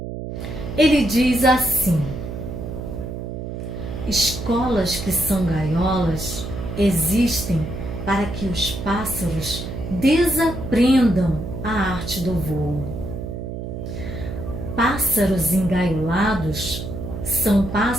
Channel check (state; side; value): noise; right; hum, 7 dB below the sound